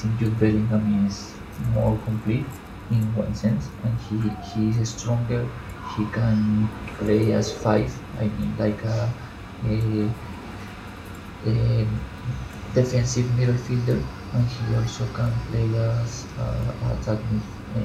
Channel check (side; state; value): both; identical; correlation 1.00